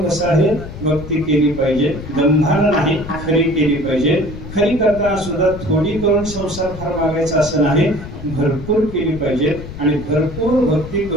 कसं आहे? भक्ती केली पाहिजे, दंभानं नाही, खरी केली पाहिजे. खरी करताना सुद्धा थोडी करून संसार फार मागायचा असं नाही, भरपूर केली पाहिजे. आणि भरपूर भक्ती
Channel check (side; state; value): left; noise; rumble, 12 dB below the sound